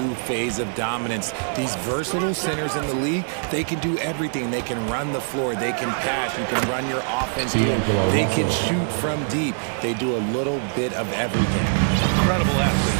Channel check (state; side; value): silent; left; digital silence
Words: phase of dominance. These versatile centers in the league, they can do everything. They can run the floor, they can pass, you can run your offense through them. They can shoot from deep. They do a little bit of everything. Incredible